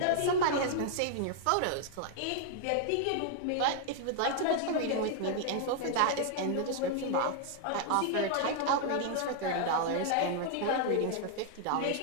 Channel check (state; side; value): different; both; correlation 0.00